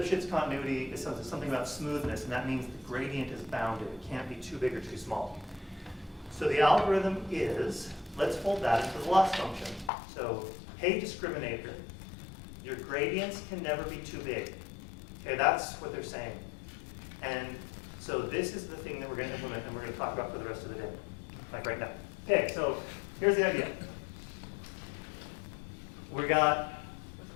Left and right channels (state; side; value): drops out; right; at 9.9 s